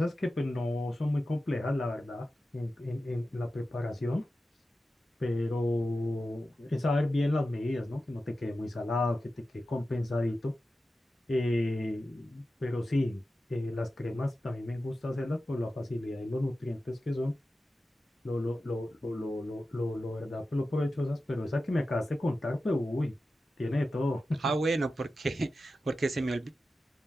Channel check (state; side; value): normal; both; correlation 0.93